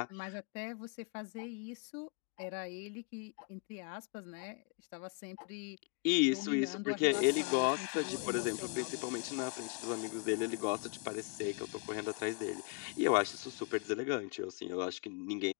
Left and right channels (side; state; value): right; quieter; 35.7 dB